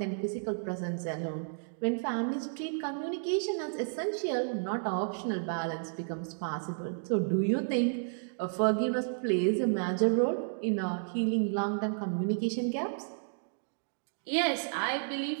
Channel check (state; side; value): silent; left; digital silence